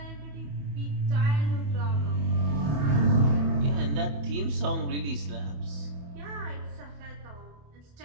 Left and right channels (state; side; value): late; left; 28 ms